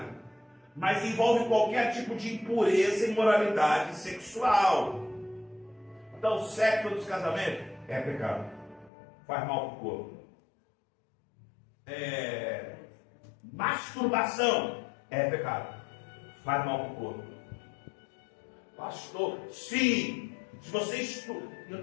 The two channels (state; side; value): drops out; right; at 8.9 s